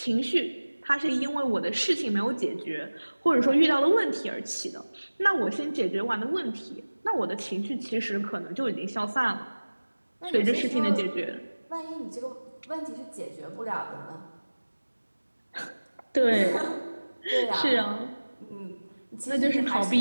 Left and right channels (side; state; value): both; inverted; correlation -1.00